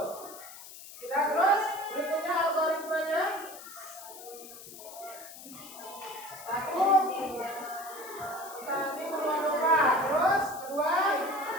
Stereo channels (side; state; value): left; noise; hiss, 15 dB below the sound